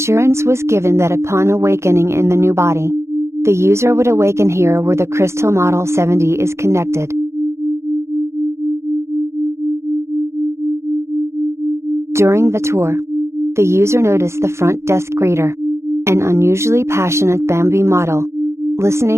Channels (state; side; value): late; left; 0.13 ms